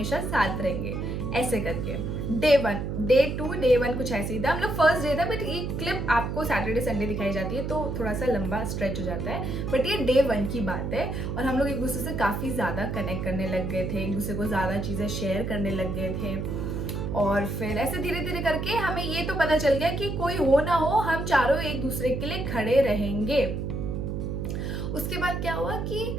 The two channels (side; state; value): right; noise; hum, 3 dB below the sound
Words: साथ रहेंगे ऐसे करके। डे 1, डे 2, डे 1 कुछ ऐसे ही था। हम लोग फर्स्ट डे था, बट ये क्लिप आपको सैटरडे संडे दिखाई जाती है तो थोड़ा सा लंबा स्ट्रेच हो जाता है, बट ये डे 1 की बात है। और हम लोग एक दूसरे से काफ़ी ज़्यादा कनेक्ट करने लग गए थे, एक दूसरे को ज़्यादा चीज़ें शेयर करने लग गए थे। और फिर ऐसे धीरे धीरे करके हमें ये तो पता चल गया कि कोई हो ना हो हम चारों एक दूसरे के लिए खड़े रहेंगे। उसके बाद क्या हुआ कि